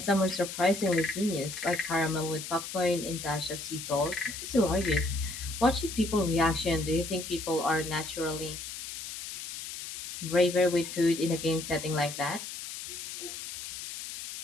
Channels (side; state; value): left; noise; hiss, 8 dB below the sound